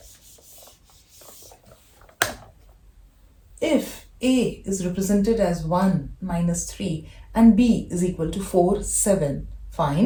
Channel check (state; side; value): identical; both; correlation 1.00